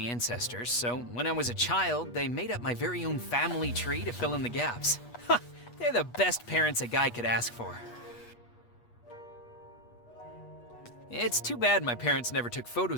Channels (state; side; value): late; right; 8.3 ms